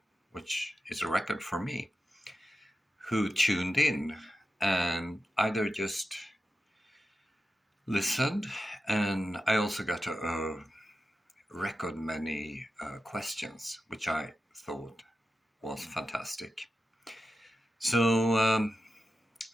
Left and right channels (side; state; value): both; normal; correlation 0.91